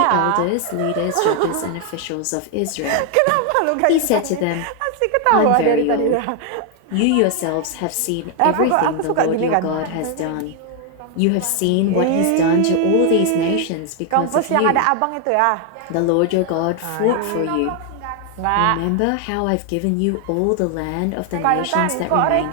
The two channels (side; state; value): both; different; correlation 0.00